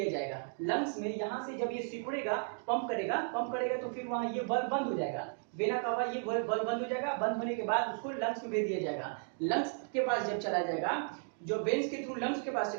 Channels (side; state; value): left; silent; 55 dB below the other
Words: जाएगा। लंग्स में यहाँ से जब ये सिकुड़ेगा, पंप करेगा तो फिर वहां ये बल्ब बंद हो जाएगा, वेना कावा ये बल्ब बंद हो जाएगा। बंद होने के बाद उसको लंग्स में भेज दिया जाएगा। लंग्स के पास जब चला जाएगा, जो वेन्स के थ्रू लंग्स के पास